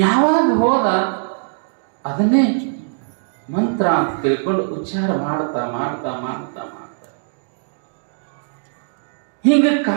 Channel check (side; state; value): left; silent; digital silence